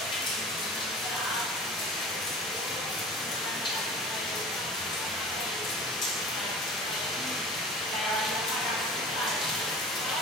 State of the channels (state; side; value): normal; both; correlation 0.40